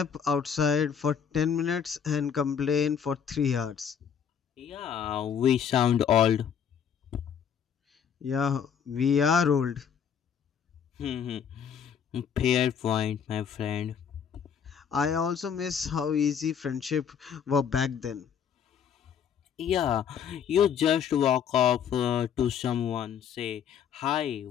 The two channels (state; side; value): quieter; right; 7.8 dB